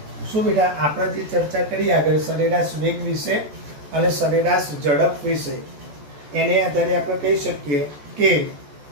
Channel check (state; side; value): late; left; 14 ms